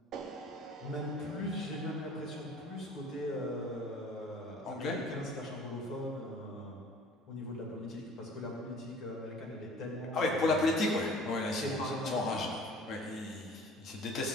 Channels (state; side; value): normal; both; correlation 0.48